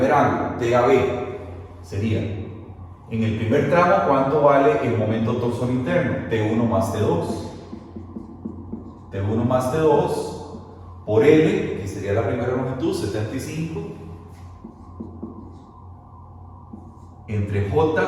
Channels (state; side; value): identical; both; correlation 1.00